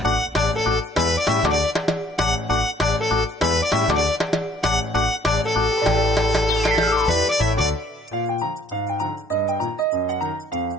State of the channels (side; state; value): both; normal; correlation 0.62